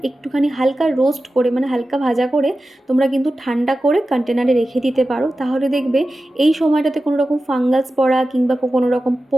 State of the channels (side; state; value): both; normal; correlation 0.94